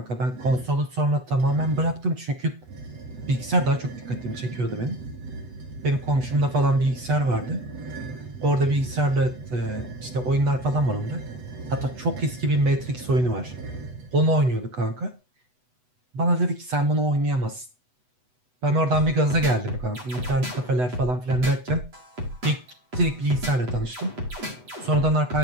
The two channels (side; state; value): left; late; 8.1 ms